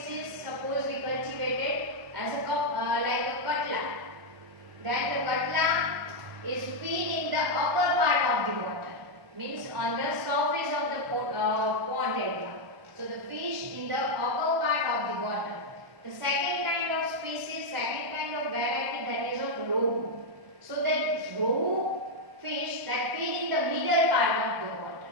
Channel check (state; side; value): late; left; 1.1 ms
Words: suppose we cultivated as a like a katla. Then the katla is feed in the upper part of the water, means on the surface of the pond area. So the fish in the upper part of the water. The second kind of species, second kind of variety, that is of rohu. So that rohu fish that feed in the middle part of the water.